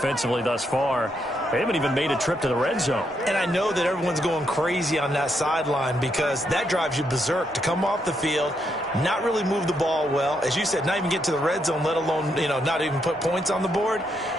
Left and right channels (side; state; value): both; normal; correlation 0.78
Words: thus far. They haven't even made a trip to the red zone. And I know that everyone's going crazy on that sideline because that drives you berserk to come off the field, not really move the ball well. As you said, not even get to the red zone, let alone, not even put points on the board.